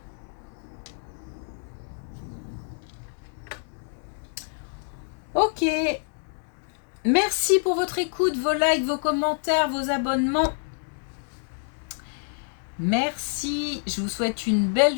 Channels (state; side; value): silent; right; 60 dB below the other